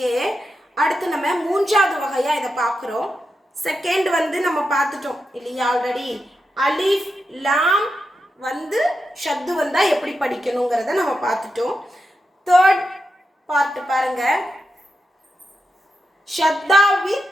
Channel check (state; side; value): normal; both; correlation 0.87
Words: அடுத்து நம்ம மூன்றாவது வகையா இதை பார்க்குறோம். செகண்ட் நம்ம பார்த்துட்டோம் இல்லையா? ஆல்ரெடி அலிஃப் லாம் ஷத்து வந்தா எப்படி படிக்கணுங்கிறத நம்ம பார்த்துட்டோம். தேர்ட் பார்ட் பாருங்க, ஷத்தா வித்